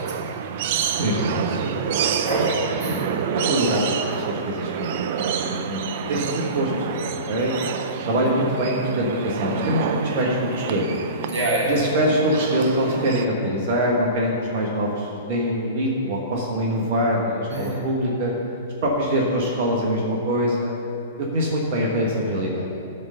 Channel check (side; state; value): both; inverted; correlation -0.32